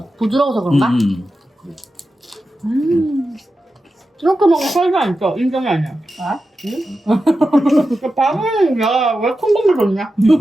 부드러워서 그런가? 이렇게 먹으면 살이 안 쪄. 인정이 아니야. 아? 밥은 야왜 콩고물 줬냐?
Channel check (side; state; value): both; normal; correlation 0.91